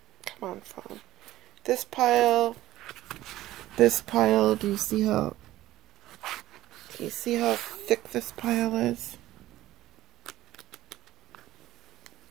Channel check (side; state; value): left; quieter; 15.4 dB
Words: Come on, phone. This pile, do you see how thick this pile is?